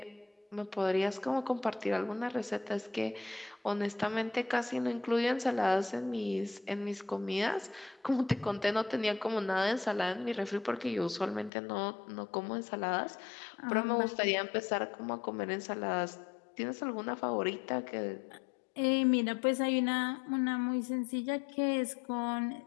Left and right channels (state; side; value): drops out; right; at 11.5 s